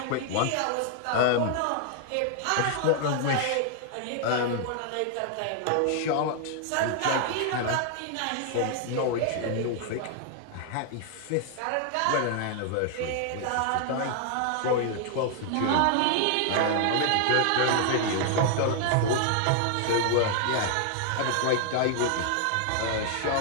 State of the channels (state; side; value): different; both; correlation 0.00